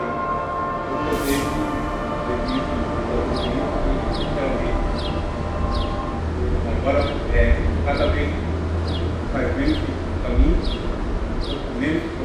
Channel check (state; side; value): identical; both; correlation 1.00